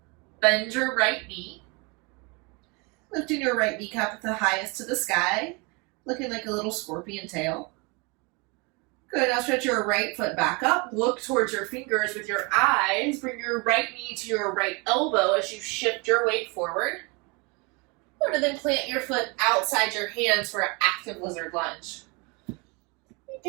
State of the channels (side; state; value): left; quieter; 29.4 dB